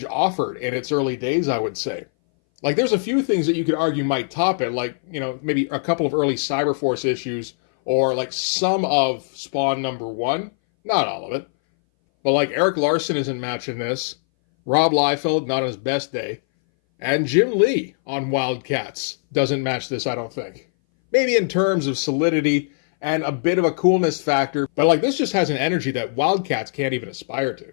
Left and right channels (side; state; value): right; silent; 60 dB below the other